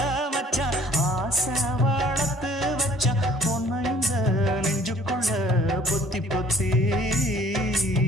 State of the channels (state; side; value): normal; both; correlation 0.57